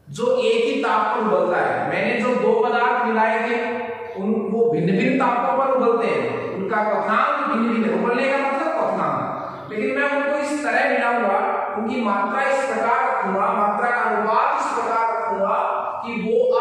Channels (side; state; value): both; identical; correlation 1.00